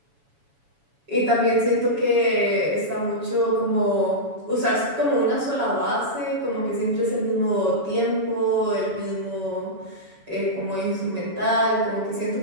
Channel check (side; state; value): left; late; 7.1 ms